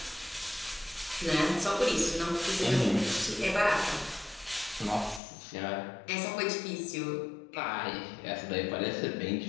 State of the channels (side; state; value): right; drops out; at 5.2 s